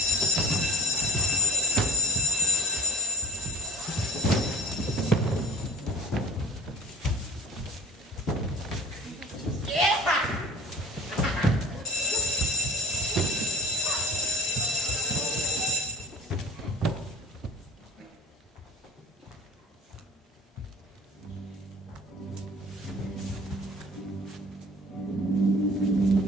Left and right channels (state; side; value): normal; both; correlation 0.39